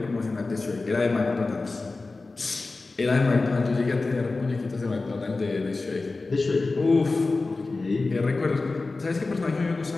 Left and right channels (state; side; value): quieter; right; 3.6 dB